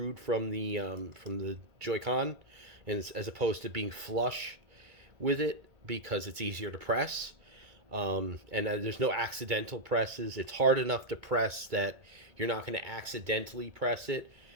from the Joy-Con, and as opposed to being flush with it because it's easier to press. And there's no accidental presses. It's hard enough to press that you're not going to accidentally press it,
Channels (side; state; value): left; late; 2.2 ms